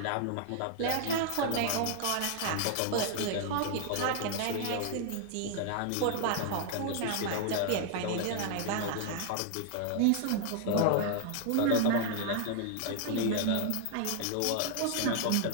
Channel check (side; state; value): both; different; correlation 0.00